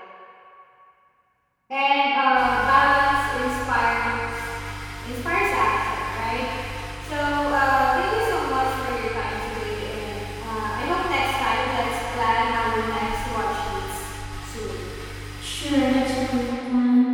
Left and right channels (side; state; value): both; identical; correlation 1.00